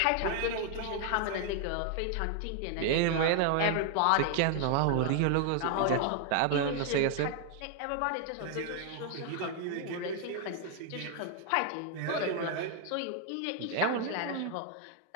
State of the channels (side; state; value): both; different; correlation 0.00